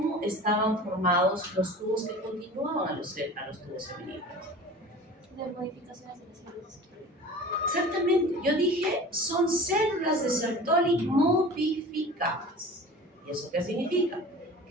estaban formados los tubos que continuaban a los tubos seminíferos? De modificaciones de las células. Exactamente, yo dije, son células de Sertoli modificadas. ¿Y eso qué significa?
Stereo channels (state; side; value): normal; both; correlation 0.39